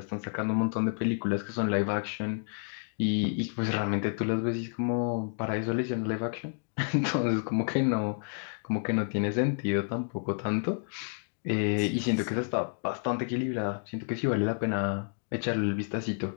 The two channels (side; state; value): right; silent; 58 dB below the other